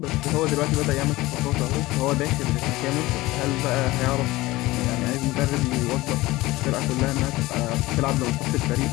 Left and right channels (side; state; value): right; quieter; 19.3 dB